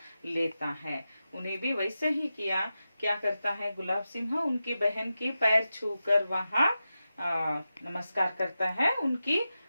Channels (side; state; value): both; inverted; correlation -0.92